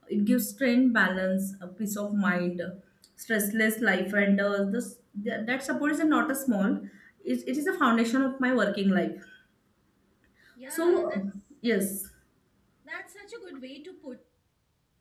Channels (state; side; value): identical; both; correlation 1.00